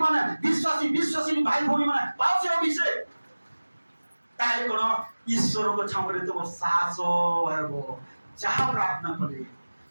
মানে বিশ্বাসী ভাই ভৌণী মানে পাও সে অভিষেক তাহলে কোন ঈশ্বরଙ୍କ ଛାମରେ ତୁମ ସାହସ ହେବ ଯାହା ପ୍ରାର୍ଥନା କଲେ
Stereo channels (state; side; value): inverted; both; correlation -1.00